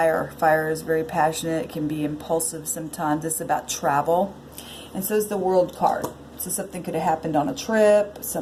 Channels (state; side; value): identical; both; correlation 1.00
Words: Fire is very passionate. It can be impulsive sometimes. It's about travel. And so is the World card. So something could have happened on a trip.